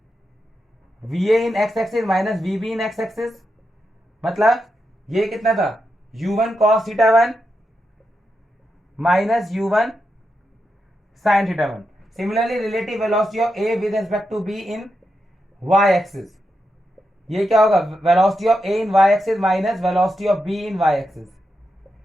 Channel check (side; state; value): both; normal; correlation 0.86